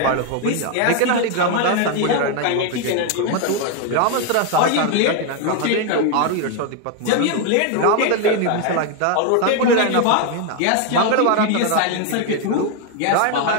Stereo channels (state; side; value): different; both; correlation 0.01